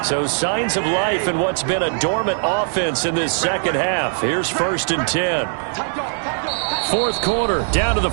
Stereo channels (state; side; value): silent; left; digital silence